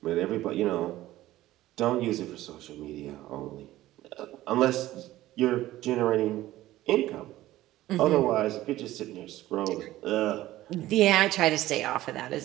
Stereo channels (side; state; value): left; quieter; 15.6 dB